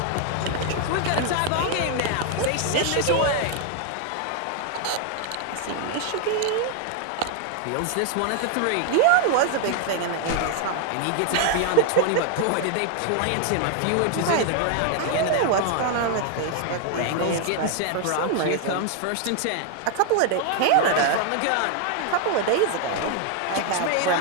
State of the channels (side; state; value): both; different; correlation 0.00